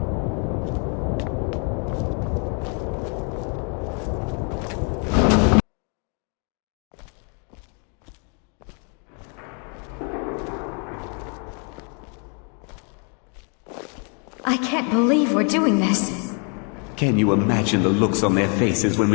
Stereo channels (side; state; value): right; quieter; 38.5 dB